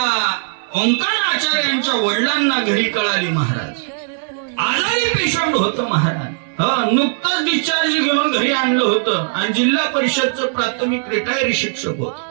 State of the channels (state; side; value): silent; left; 63 dB below the other